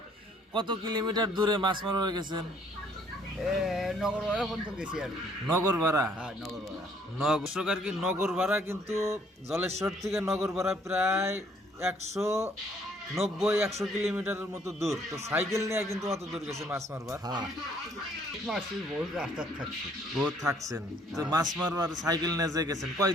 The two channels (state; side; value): normal; both; correlation 0.63